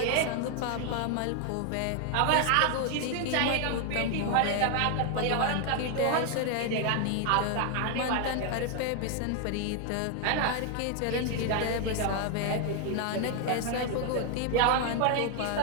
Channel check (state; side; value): different; both; correlation 0.00